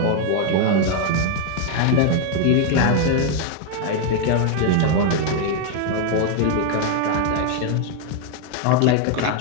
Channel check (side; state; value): both; different; correlation 0.00